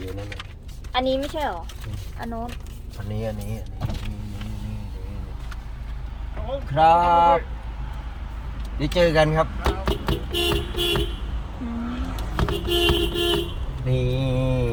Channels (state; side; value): identical; both; correlation 1.00